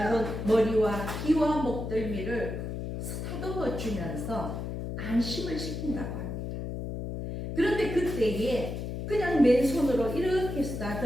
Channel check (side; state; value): left; noise; hum, 5 dB below the sound